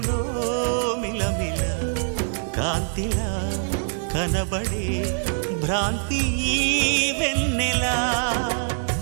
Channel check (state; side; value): silent; left; 58 dB below the other